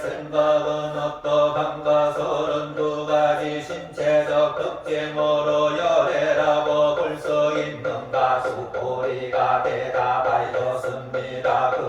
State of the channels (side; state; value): both; identical; correlation 1.00